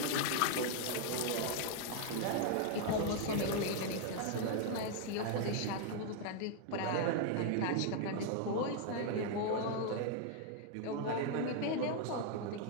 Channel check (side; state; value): both; different; correlation 0.00